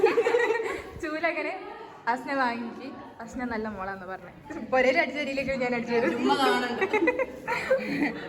ചൂലങ്ങനെ അസ്ന വാങ്ങിക്ക്. അസ്ന നല്ല മോളാന്ന് പറഞ്ഞേ. പൊരയിൽ അടിച്ച രീതിയിലേക്ക് ഞാൻ അടിച്ചു തരും. ഉമ്മ കാണണ്ട.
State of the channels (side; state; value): both; identical; correlation 1.00